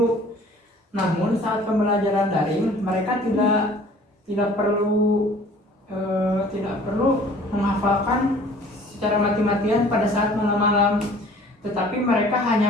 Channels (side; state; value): both; normal; correlation 0.51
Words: Namun saat pembelajaran daring, mereka tidak perlu menghafalkan secara mati-matian pada saat malam-malam, tetapi mereka